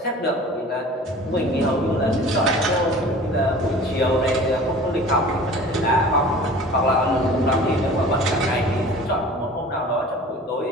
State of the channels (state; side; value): normal; both; correlation 0.43